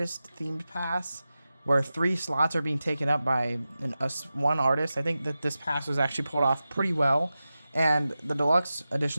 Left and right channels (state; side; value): inverted; both; correlation -0.93